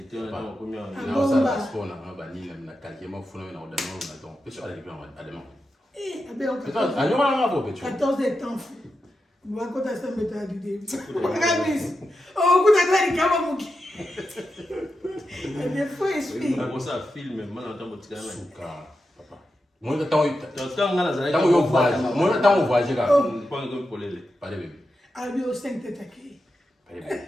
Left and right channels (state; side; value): normal; both; correlation 0.89